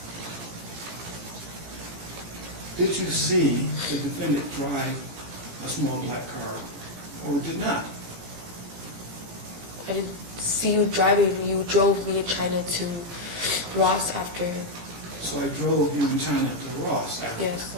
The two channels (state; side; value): late; left; 17 ms